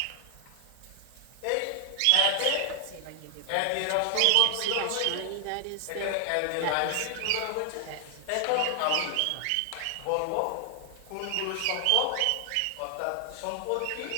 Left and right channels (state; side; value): different; both; correlation 0.00